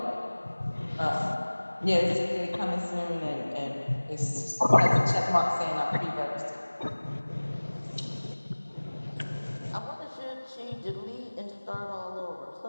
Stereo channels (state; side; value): inverted; both; correlation -1.00